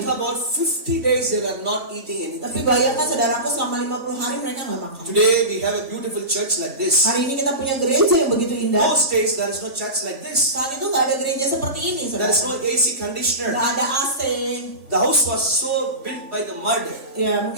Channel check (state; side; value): late; left; 3.5 ms